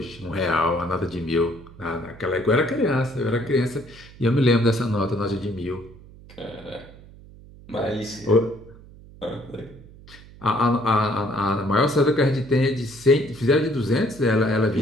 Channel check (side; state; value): right; noise; hum, 20 dB below the sound